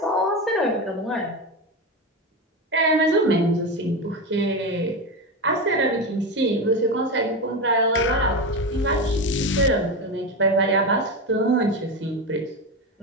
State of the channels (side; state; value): both; normal; correlation 0.18